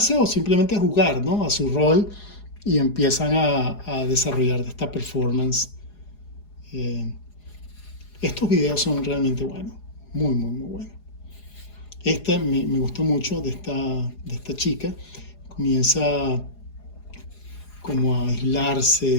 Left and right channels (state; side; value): late; right; 4.8 ms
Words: o simplemente a jugar, ¿no? A su rol y empiezan a desarrollar esta performance. Eh, Estos videos son realmente buenos, muy, muy, muy buenos. Esta me gustó mucho de esta chica. Comienza como a aislarse,